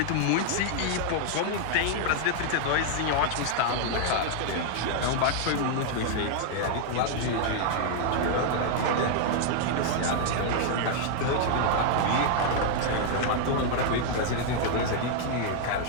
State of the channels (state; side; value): different; both; correlation 0.00